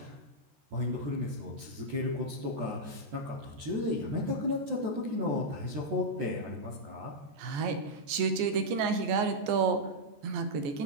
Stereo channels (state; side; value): late; left; 14 ms